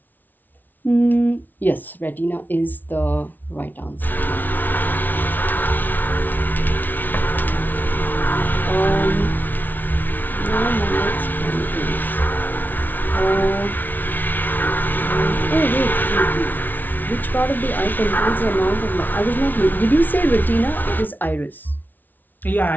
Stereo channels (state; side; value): late; right; 0.084 ms